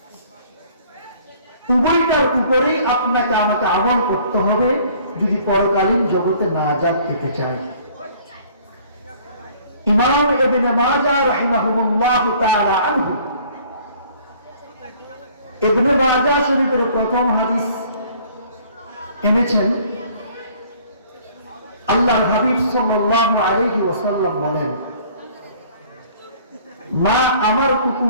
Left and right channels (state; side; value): inverted; both; correlation -0.55